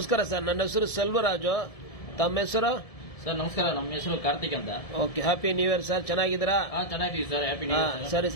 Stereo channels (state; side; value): late; right; 1.7 ms